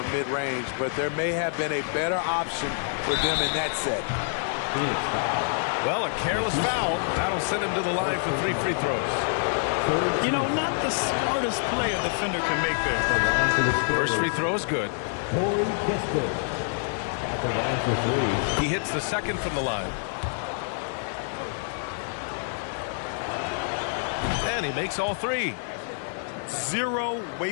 mid-range, but there may have been a better option for them in that set. Well, a careless foul. That'll send him to the line for 3 free throws. You know, not the smartest play a defender can make there. First free throw is good. He hits the second from the line. And he makes all 3. 0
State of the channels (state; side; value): silent; right; digital silence